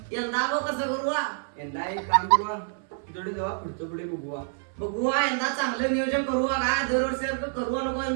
यंदा गो कसं करू हा? यंदा एक काम करू थोडे जेव्हा पुढचं पुढे बघू बघू हा, यंदा चांगलं नियोजन करू हा का दरवर्षी करू नको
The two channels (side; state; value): left; silent; 60 dB below the other